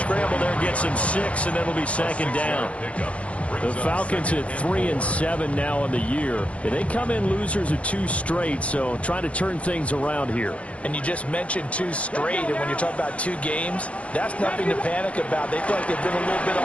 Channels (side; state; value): right; late; 0.063 ms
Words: there gets him 6, and it'll be 2nd down. The Falcons at 3 and 7 now on the year. They come in losers of 2 straight, so trying to turn things around here. And you just mentioned 2 straight, and when you're talking about 2 games, that's nothing to panic about. They feel like they've been a little bit